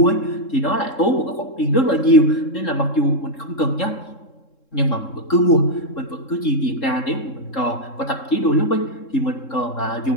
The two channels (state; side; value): late; right; 3.7 ms